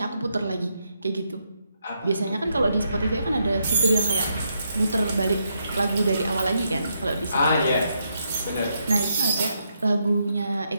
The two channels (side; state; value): both; inverted; correlation -0.79